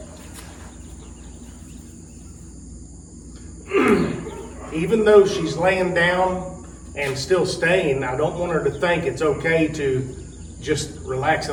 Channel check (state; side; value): identical; both; correlation 1.00